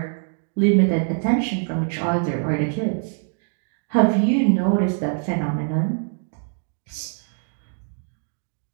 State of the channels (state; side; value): silent; left; 59 dB below the other